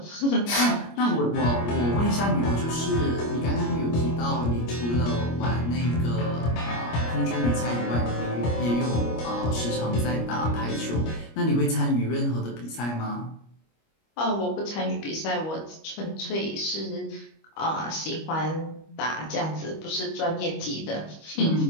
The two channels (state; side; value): late; right; 25 ms